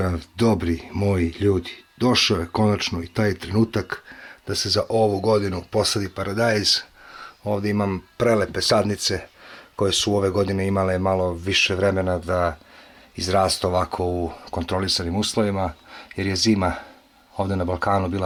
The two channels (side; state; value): both; identical; correlation 1.00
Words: dobri moji ljudi. Došao je konačno i taj trenutak da se za ovu godinu posadi paradajz. Ovdje imam prelepe sadnice koje su ove godine imale malo više vremena da izrastu ovako u kontrolisanim uslovima, jer je zima ovdje na Balkanu